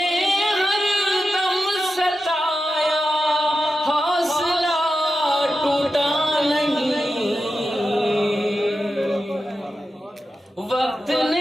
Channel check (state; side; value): normal; both; correlation 0.90